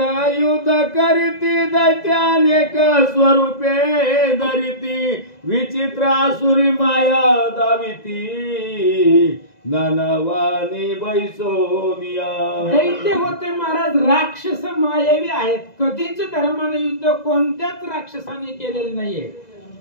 युद्ध करीती दैत्यानेक स्वरूपे धरिती विचित्र आसुरी माया दाविती नानावानी बैसोनिया. दैत्य होते महाराज राक्षस मायावी आहेत. कधीच धर्माने युद्ध कोणत्याच राक्षसाने केलेलं नाहीये.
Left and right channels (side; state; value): right; late; 2.0 ms